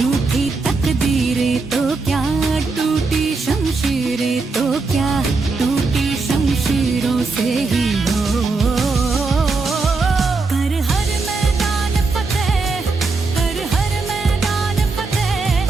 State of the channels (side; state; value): left; quieter; 4.0 dB